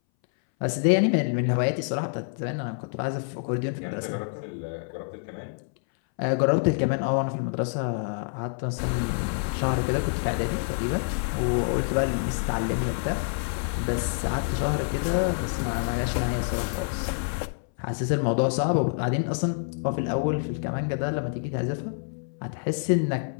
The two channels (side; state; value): right; silent; 60 dB below the other